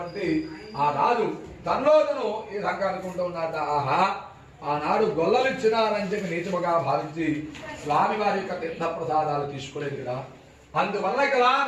ఆ రాజు తనలో తను ఈ విధంగా అనుకుంటూ ఉన్నట్ట, ఆహా ఆనాడు గొల్లలిచ్చినారని చెప్పి నీచముగా భావించి స్వామివారి యొక్క తీర్థ ప్రసాదాలు తీసుకోలేదు కదా, అందువల్ల కదా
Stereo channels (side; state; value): both; identical; correlation 1.00